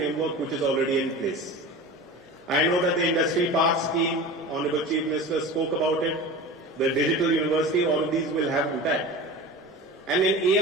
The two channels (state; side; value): normal; both; correlation 0.33